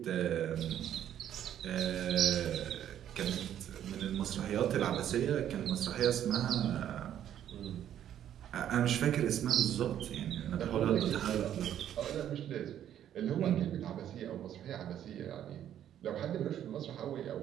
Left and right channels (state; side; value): quieter; left; 10.6 dB